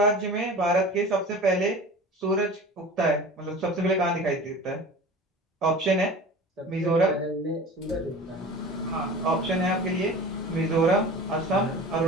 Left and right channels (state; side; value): normal; both; correlation 0.38